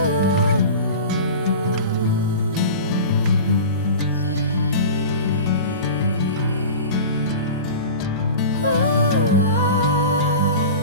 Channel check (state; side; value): inverted; both; correlation -0.33